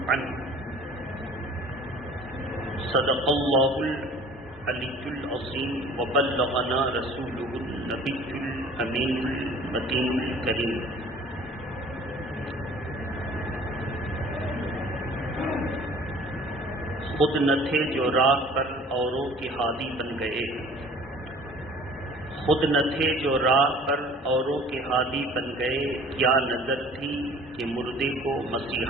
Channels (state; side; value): normal; both; correlation 0.48